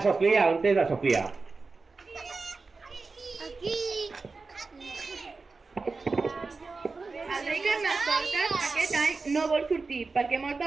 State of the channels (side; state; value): left; quieter; 4.1 dB